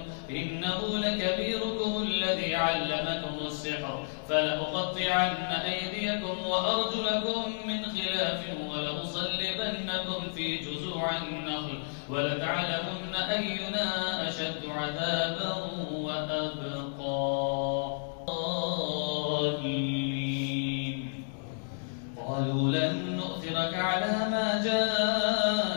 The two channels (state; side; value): silent; right; digital silence